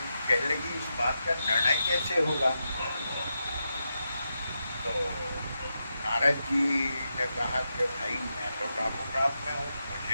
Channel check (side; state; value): both; inverted; correlation -0.87